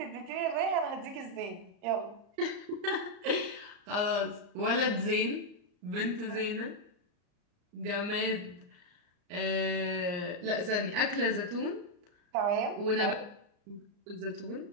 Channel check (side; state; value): left; late; 34 ms